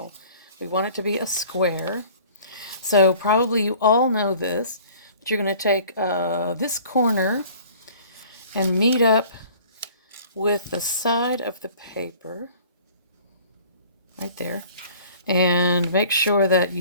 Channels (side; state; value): both; inverted; correlation -0.50